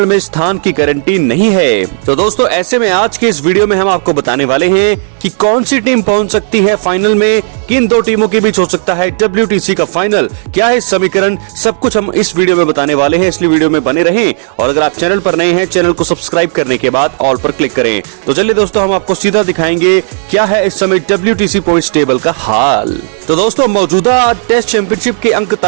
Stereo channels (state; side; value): silent; left; 74 dB below the other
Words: में स्थान की गारंटी नहीं है। तो दोस्तों ऐसे में आज के इस वीडियो में हम आपको बताने वाले हैं कि कौन सी टीम पहुंच सकती है फाइनल में, किन दो टीमों के बीच हो सकता है WTC का फाइनल, क्या है समीकरण, सब कुछ हम इस वीडियो में बताने वाले हैं। इसलिए वीडियो में बने रहें और अगर आप चैनल पर नए हैं चैनल को सब्सक्राइब करने के बाद ऑल पर क्लिक करें। तो चलिए दोस्तों हम आपको सीधा दिखाएंगे क्या है इस समय WTC पॉइंट्स टेबल का हाल। तो दोस्तों मौजूदा टेस्ट चैंपियनशिप के अंक